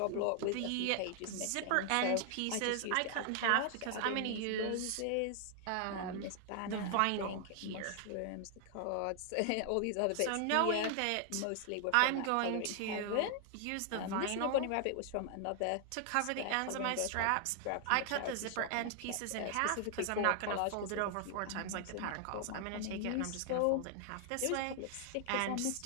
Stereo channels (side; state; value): both; different; correlation 0.00